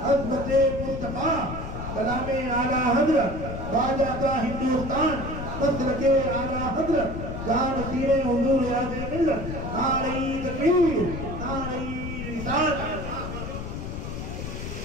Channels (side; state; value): left; noise; rumble, 6 dB below the sound